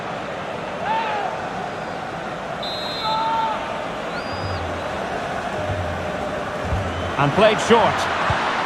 And played short.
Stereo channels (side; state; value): both; identical; correlation 1.00